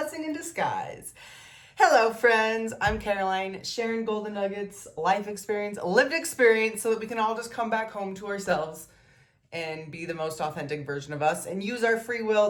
in disguise. Hello, friends. I'm Caroline, sharing golden nuggets, life experience, lived experience, so that we can all just come back home to ourselves and be the most authentic version of us and use our free will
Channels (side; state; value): both; identical; correlation 1.00